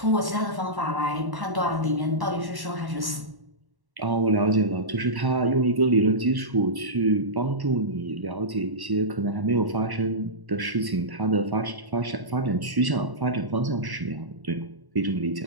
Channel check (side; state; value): left; late; 1.1 ms